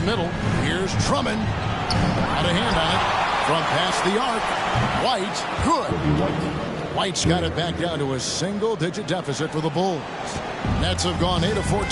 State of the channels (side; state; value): both; identical; correlation 1.00